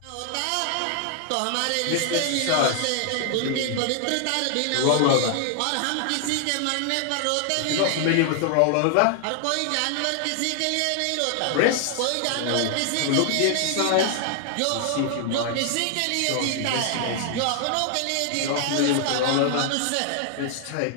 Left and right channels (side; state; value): both; different; correlation 0.00